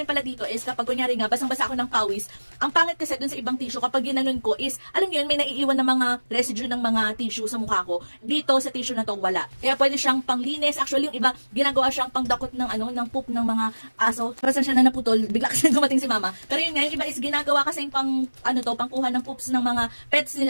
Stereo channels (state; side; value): inverted; both; correlation -1.00